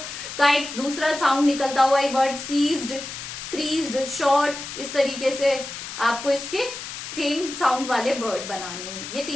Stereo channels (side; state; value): left; noise; hiss, 9 dB below the sound